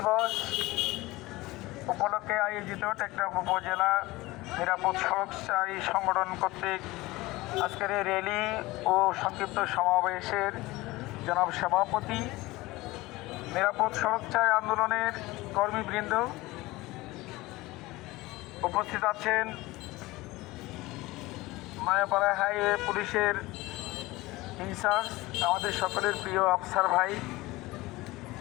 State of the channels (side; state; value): right; quieter; 20.1 dB